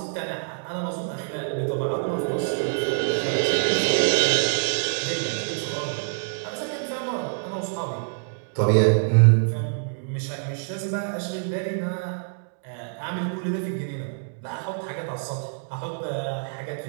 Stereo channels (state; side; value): silent; left; digital silence